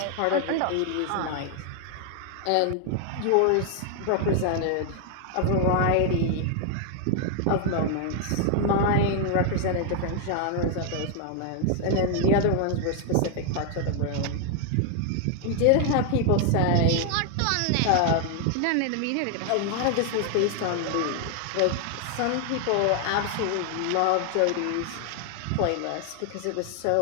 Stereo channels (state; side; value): different; both; correlation 0.00